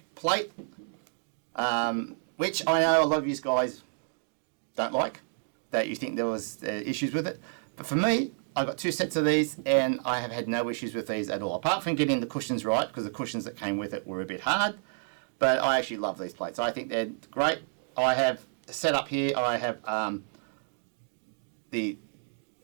plate, which I know a lot of you guys don't like, that you think there was issues with it. But for me, I got 2 sets of these and I have had no issues with these at all, apart from getting the cushions right, because the cushions that came with it were a bit hard. But I actually love these plates. I think they're great. I have set up here, I have the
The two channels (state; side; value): silent; left; digital silence